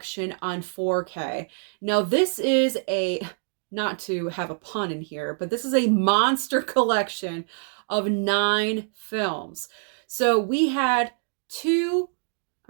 on 4K. Now, this is a, not to have a pun in here, but this is a monster collection of 9 films. So we had two,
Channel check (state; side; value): silent; left; digital silence